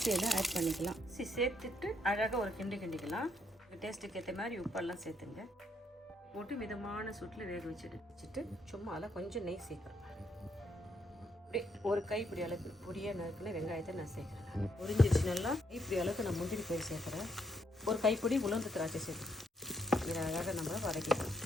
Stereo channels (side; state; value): both; normal; correlation 0.74